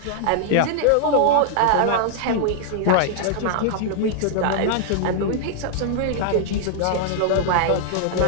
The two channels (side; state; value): both; different; correlation -0.01